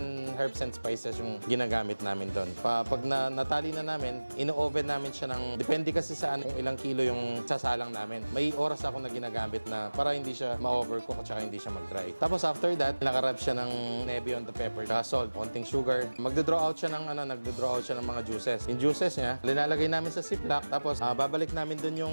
herbs and spices yung ginagamit namin doon. Pag natali na namin, ino-oven namin siya ng, depende kasi saan kung ilang kilo yung sasalang namin. May oras ako na ginagamit na para hindi siya ma-overcook at saka hindi siya mag-dry. Tapos after that, nakarab siya ng navy on the pepper, saka salt, konting sugar. Magdo-draw out siya ng mga juices. Yung juices niya, linalagay namin sa ziplock, tapos babalik namin dun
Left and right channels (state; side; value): inverted; both; correlation -1.00